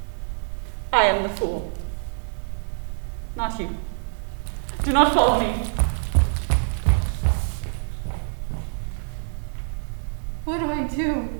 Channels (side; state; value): left; silent; digital silence